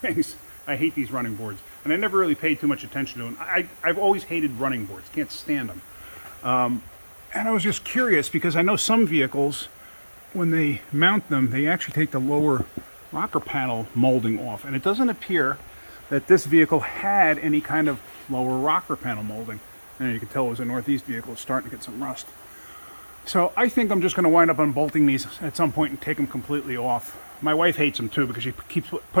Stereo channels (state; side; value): inverted; both; correlation -1.00